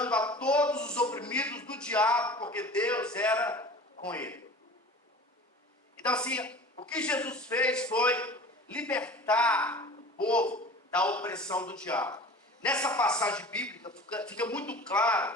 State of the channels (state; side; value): normal; both; correlation 0.40